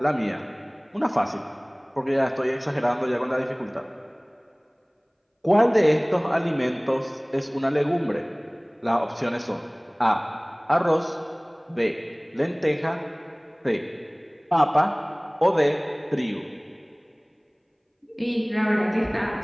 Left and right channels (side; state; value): both; identical; correlation 1.00